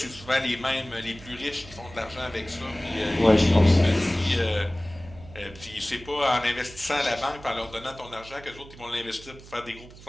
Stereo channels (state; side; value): noise; right; hum, 19 dB below the sound